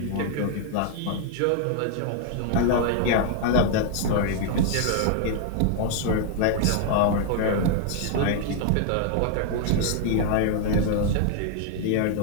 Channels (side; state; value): both; different; correlation 0.00